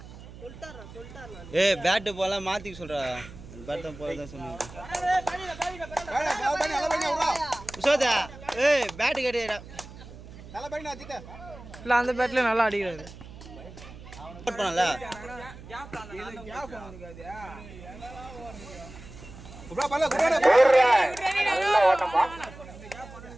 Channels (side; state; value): right; noise; hum, 16 dB below the sound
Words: ஏய் பேட் போல மாத்தி சொல்றா பேட் போல தான் சொன்னேன் உசோதா ஏய் பேட் கேடிடா தல பையனா அடிட்ட இல்ல அந்த பேட்ல நல்லா அடிக்குறாரு போட் பண்ணல குப்ரா பல்ல குப்ரா நல்ல ஓட்டமா.